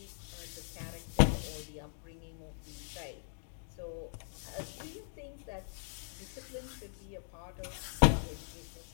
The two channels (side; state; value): right; silent; digital silence